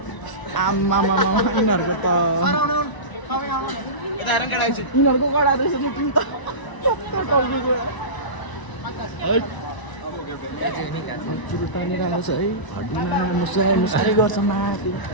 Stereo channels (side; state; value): right; late; 1.0 ms